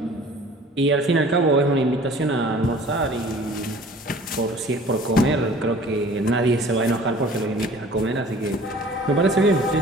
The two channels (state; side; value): normal; both; correlation 0.48